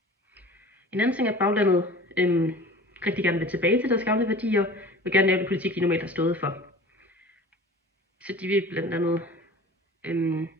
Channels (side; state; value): both; normal; correlation 0.42